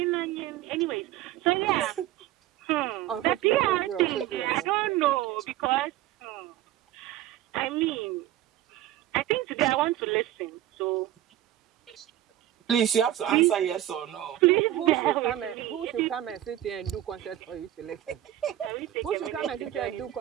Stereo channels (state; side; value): quieter; left; 13.5 dB